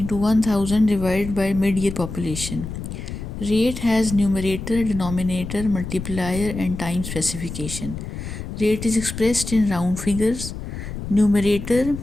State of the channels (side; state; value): left; noise; rumble, 8 dB below the sound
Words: 1000 divided by mid-year population. Rate has numerator, denominator, multiplier and time specification. Rate is expressed in round figures. Numerator